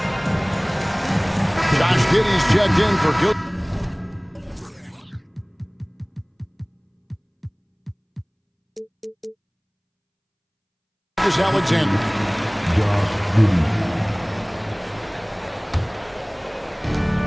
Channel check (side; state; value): both; identical; correlation 1.00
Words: Josh Giddey's checked in for Gilgeous-Alexander.